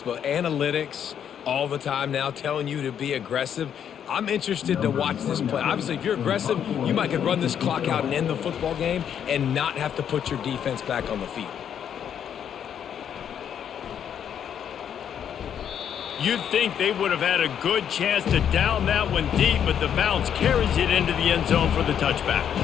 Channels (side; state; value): right; quieter; 8.8 dB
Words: but analytics all the time now telling you to be aggressive. I'm interested to watch this play. Obviously, if you're aggressive, you might could run this clock out and end the football game and not have to put your defense back on the field. You'd think they would have had a good chance to down that one deep, but the bounce carries it into the end zone for the touchback.